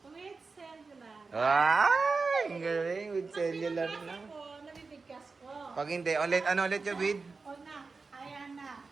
With cellular. Ay! Ang galing. With cellular Pag na. pinabasa ko, nabibigkas ko. Pag hindi, ano ulit yung with? O na, ayan na.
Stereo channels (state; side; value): quieter; left; 4.3 dB